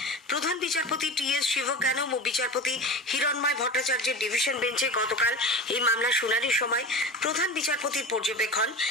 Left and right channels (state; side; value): normal; both; correlation 0.30